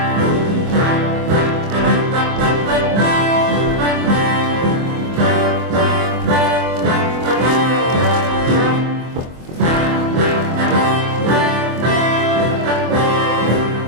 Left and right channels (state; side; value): late; left; 24 ms